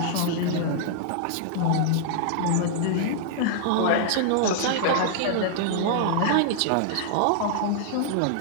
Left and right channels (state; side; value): different; both; correlation -0.01